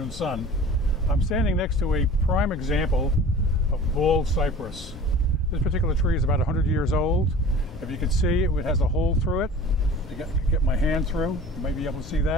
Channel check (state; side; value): normal; both; correlation 0.42